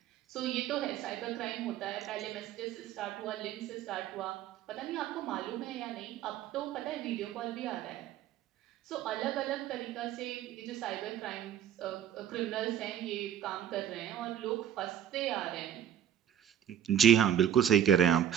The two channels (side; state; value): left; quieter; 9.8 dB